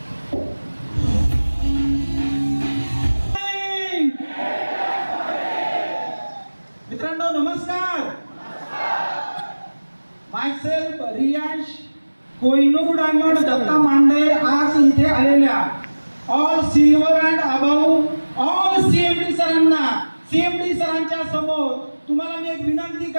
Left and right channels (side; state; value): both; inverted; correlation -1.00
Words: मित्रांनो नमस्कार. मायसेल्फ रियांश कोहिनूर डायमंड दत्ता मांडे आज इथे आलेल्या all silver and about all CMD सरांना, सीएमडी सरांच्या समोर तुम्हाला मी एक विनंती